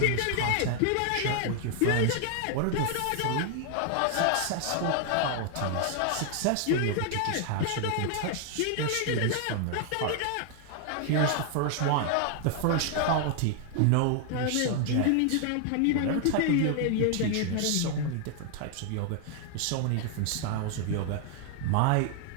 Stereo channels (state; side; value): different; both; correlation 0.00